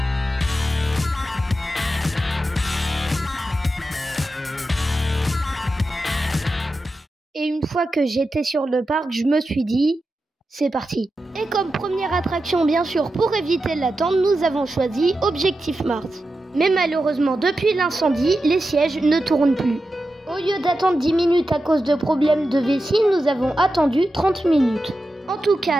Et une fois que j'étais sur le parc, je me suis dit, c'est parti. Et comme première attraction, bien sûr, pour éviter l'attente, nous avons choisi Objectif Mars. Mais malheureusement, depuis l'incendie, les sièges ne tournent plus. Au lieu d'attendre 10 minutes à cause de problèmes de vessie, nous avons attendu 30 minutes. En tout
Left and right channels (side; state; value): both; normal; correlation 0.90